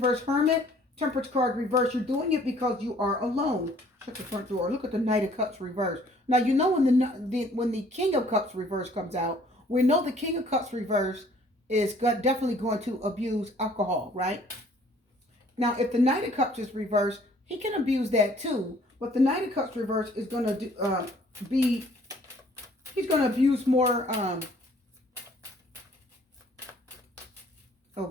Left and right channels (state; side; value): normal; both; correlation 0.58